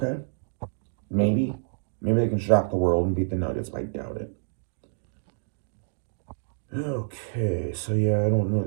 Maybe they can shock the world and beat the Nuggets, but I doubt it. Okay, so yeah, I don't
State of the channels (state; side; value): silent; left; digital silence